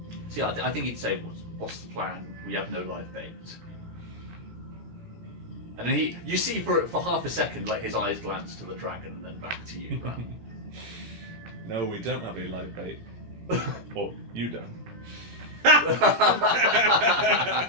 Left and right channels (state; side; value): late; left; 17 ms